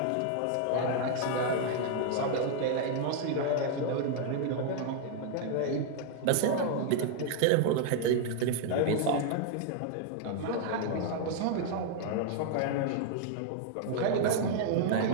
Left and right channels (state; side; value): different; both; correlation 0.00